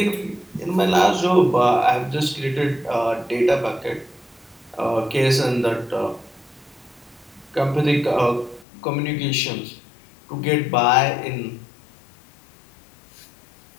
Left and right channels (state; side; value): drops out; right; at 8.7 s